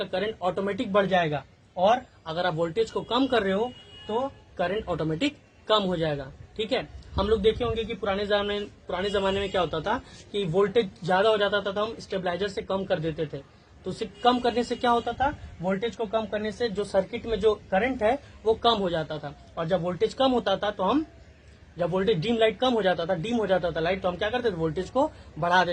करंट ऑटोमेटिक बढ़ जाएगा, और अगर आप वोल्टेज को कम कर रहे हो तो करंट ऑटोमेटिक कम हो जाएगा। ठीक है, हम लोग देखे होंगे कि पुराने जमाने में क्या होता था कि वोल्टेज ज्यादा हो जाता था तो हम स्टेबलाइजर से कम कर देते थे। तो उसे कम करने से क्या होता था, वोल्टेज को कम करने से जो सर्किट में जो करंट है वो कम हो जाता था, और जब वोल्टेज कम होता था तो जब वोल्टेज डीम हो जाता था लाइट, तो हम क्या करते थे, वोल्टेज को बढ़ा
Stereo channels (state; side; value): identical; both; correlation 1.00